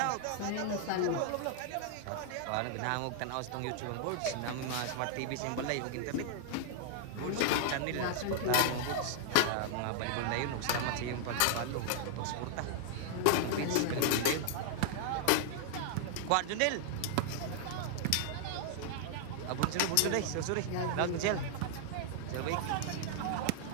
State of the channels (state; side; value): different; both; correlation -0.01